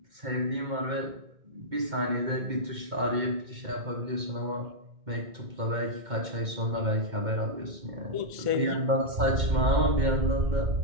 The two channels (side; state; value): left; late; 2.1 ms